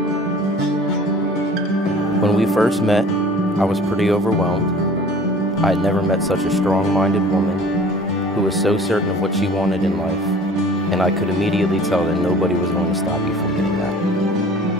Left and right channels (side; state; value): both; normal; correlation 0.46